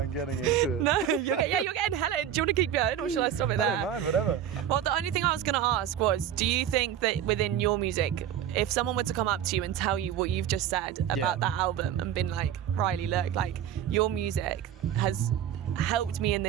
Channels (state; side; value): quieter; left; 10.0 dB